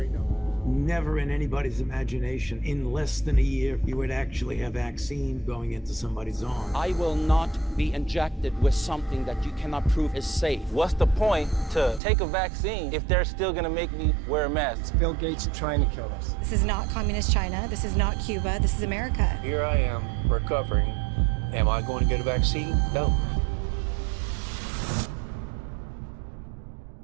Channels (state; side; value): drops out; left; at 12.0 s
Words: numbers. Never in anybody's imagination, in less than a year, you would actually have vaccine going into somebody's arm. I will not be injected with something that you cannot prove is safe. What's the point to take a vaccine if they're still gonna make me wear a mask? It's Bill Gates trying to kill us. This is not communist China. This is not Cuba. This is America. Here I am, recovering. Am I going to get a vaccine? No.